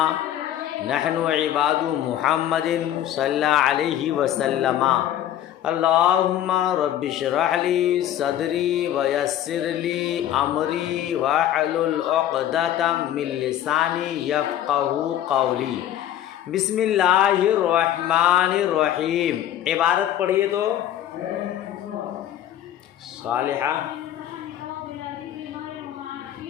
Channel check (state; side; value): quieter; right; 11.6 dB